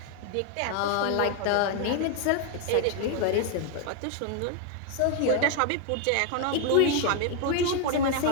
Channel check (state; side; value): different; both; correlation 0.00